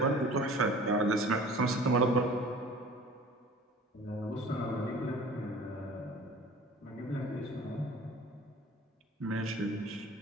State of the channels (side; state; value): both; normal; correlation 0.45